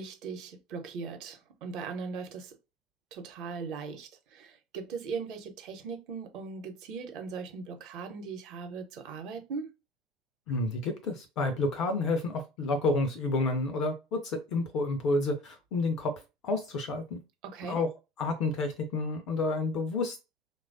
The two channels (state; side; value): normal; both; correlation 0.43